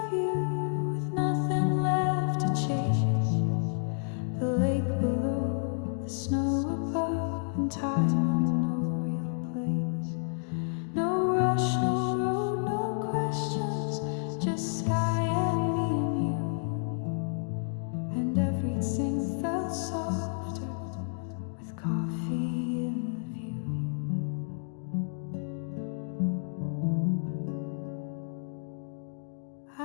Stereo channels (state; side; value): silent; right; digital silence